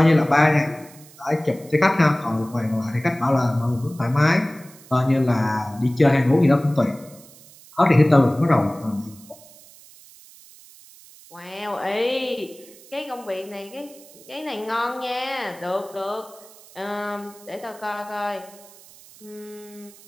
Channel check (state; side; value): noise; right; hiss, 23 dB below the sound